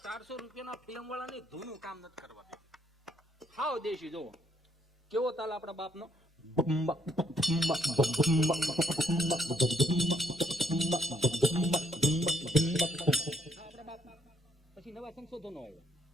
400 રૂપિયાના ફિલ્મ વાળાની ધૂનું કામ નથી કરવા. હાવ દેશી જોવો કેવો તાલ આપણા બાપનો. પછી નવા સંશોધનો આવ્યા,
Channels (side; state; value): both; normal; correlation 0.70